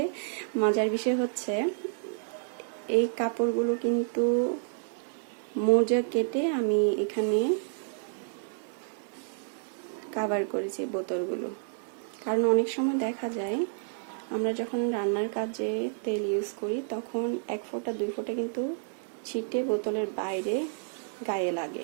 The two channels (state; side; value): silent; left; digital silence